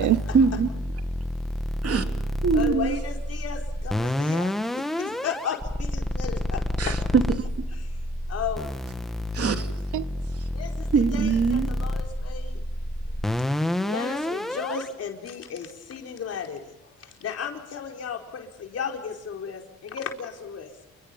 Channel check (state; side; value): normal; both; correlation 0.58